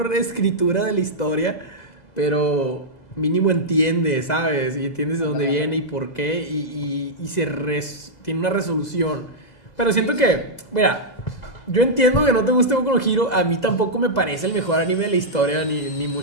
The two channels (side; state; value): right; late; 2.0 ms